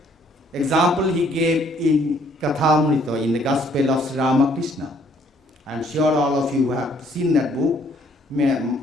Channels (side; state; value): both; normal; correlation 0.64